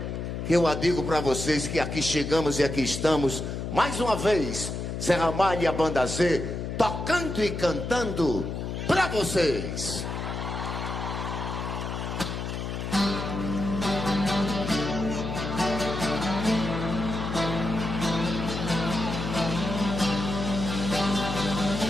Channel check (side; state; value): left; noise; hum, 4 dB below the sound